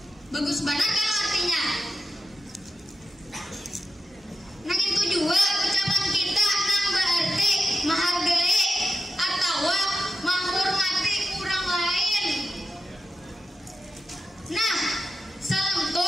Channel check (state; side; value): normal; both; correlation 0.90